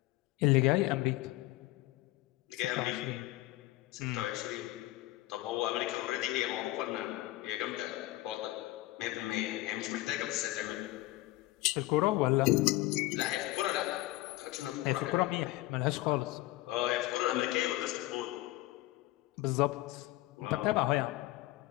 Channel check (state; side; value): quieter; right; 17.9 dB